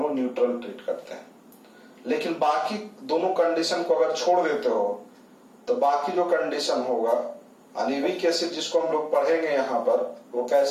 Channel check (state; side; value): identical; both; correlation 1.00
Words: लोग न्यूट्रल ट्रीट करते हैं। लेकिन बाकी दोनों कंडीशन को अगर छोड़ देते हो तो बाकी जो कंडीशन होगा, यानी वीक एसिड जिसको हम लोग पढ़ेंगे यहाँ पर, वो